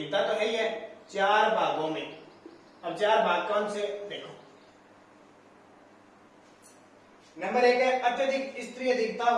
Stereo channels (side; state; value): both; identical; correlation 1.00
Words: तो है ही है, 4 भागों में। अब 4 भाग कौन से, देखो। नंबर 1 है अत्यधिक स्त्री अधिकता